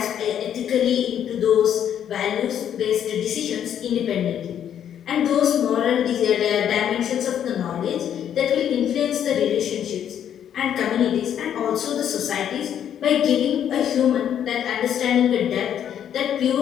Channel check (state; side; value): quieter; right; 9.6 dB